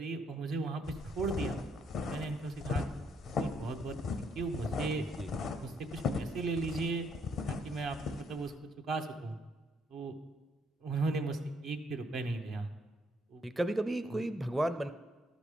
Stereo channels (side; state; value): both; normal; correlation 0.71